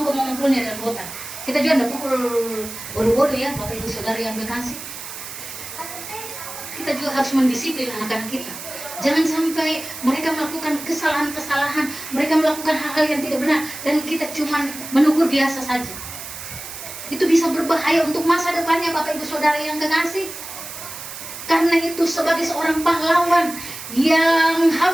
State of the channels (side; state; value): right; noise; hiss, 11 dB below the sound